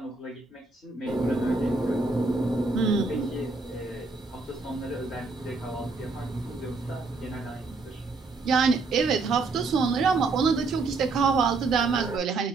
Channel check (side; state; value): left; quieter; 3.8 dB